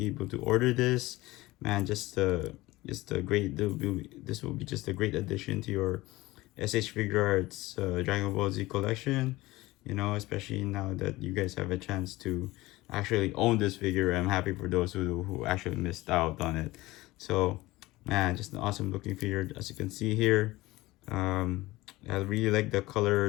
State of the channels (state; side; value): quieter; right; 19.4 dB